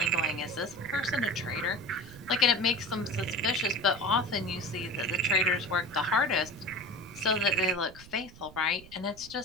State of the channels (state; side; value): noise; right; rumble, 19 dB below the sound